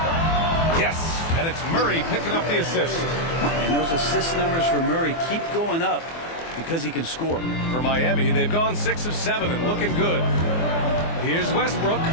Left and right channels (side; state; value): right; late; 24 ms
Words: Yes, and it's Murray picking up the assist. And those assist numbers for Murray keep going up because he can score. For Miami, they've gone 6 of 7 and looking good. Here's Westbrook.